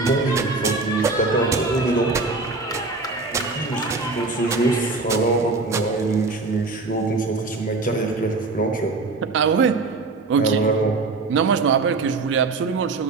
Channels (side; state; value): left; quieter; 3.7 dB